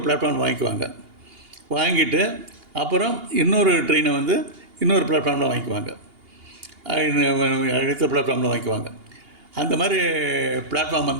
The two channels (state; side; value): late; left; 2.8 ms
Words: பிளாட்ஃபார்ம் வாங்கிக்குவாங்க. வாங்கிட்டு அப்புறம் இன்னொரு ட்ரெயினை வந்து இன்னொரு பிளாட்ஃபார்மில் வாங்கிக்குவாங்க, அடுத்த பிளாட்ஃபார்மில் வாங்கிக்குவாங்க. அந்த மாதிரி பிளாட்ஃபார்ம்